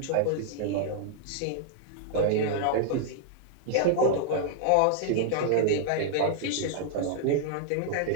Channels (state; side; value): different; both; correlation -0.01